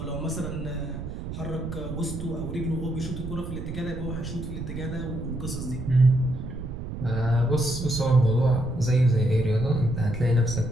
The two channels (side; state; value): right; noise; rumble, 7 dB below the sound